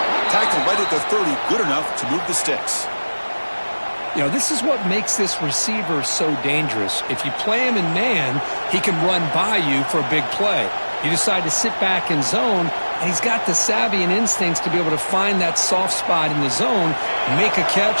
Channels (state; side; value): inverted; both; correlation -1.00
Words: Tackle right at the 30, good enough to move the sticks. You know, this is what makes this receiver so dangerous. If you play him in man, he can run by you for a big play. You decide to sit back in zone, and he's got the savvy and instincts to be able to find that soft spot in the zone, make a